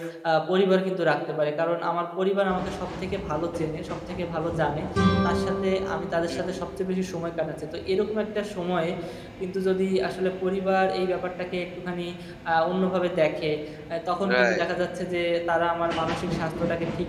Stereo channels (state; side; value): identical; both; correlation 1.00